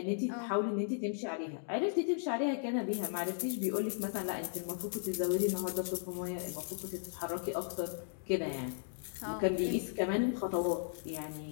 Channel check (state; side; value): silent; right; digital silence